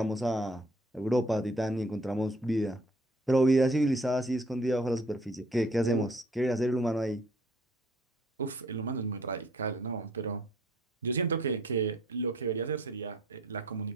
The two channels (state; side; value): normal; both; correlation 0.59